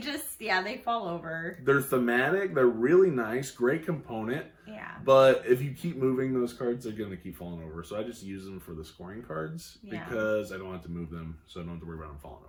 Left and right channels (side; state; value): both; identical; correlation 1.00